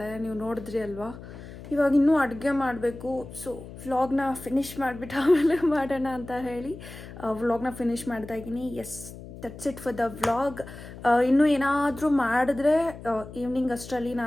ನೀವು ನೋಡಿದ್ರಿ ಅಲ್ವಾ. ಇವಾಗ ಇನ್ನೂ ಅಡುಗೆ ಮಾಡಬೇಕು. ಸೊ ವ್ಲಾಗ್ನ ಫಿನಿಷ್ ಮಾಡಿಬಿಟ್ಟು ಆಮೇಲೆ ಮಾಡೋಣ ಅಂತ ಹೇಳಿ ವ್ಲಾಗ್ನ ಫಿನಿಷ್ ಮಾಡ್ತಾ ಇದ್ದೀನಿ. Yes, that's it for the vlog. ಇನ್ನೂ ಏನಾದರೂ ಮಾಡಿದ್ರೆ ಈವ್ನಿಂಗ್ ಅಷ್ಟರಲ್ಲಿ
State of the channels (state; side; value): noise; left; hum, 14 dB below the sound